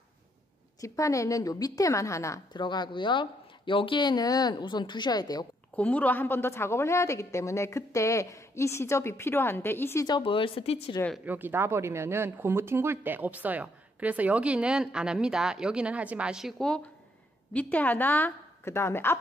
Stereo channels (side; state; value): both; normal; correlation 0.72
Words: 요 밑에만 하나 들어가고요. 여기에는 우선 두셔야 돼요. 고무로 한 번 더 작업을 해야 되기 때문에 그때 이 시접이 필요한데, 이 시접을 스티치를 여기 놔버리면은 고무 튕굴 때 없어요. 그래서 여기는 안 합니다. 여기는 하지 마시고 밑에 하나, 그 다음에